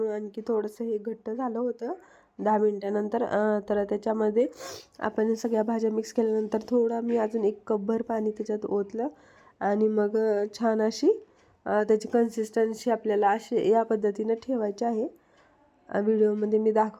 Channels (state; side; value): identical; both; correlation 1.00